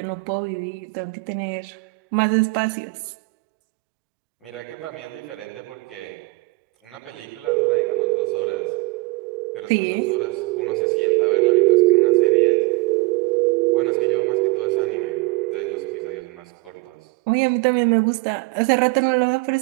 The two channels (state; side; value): quieter; left; 25.1 dB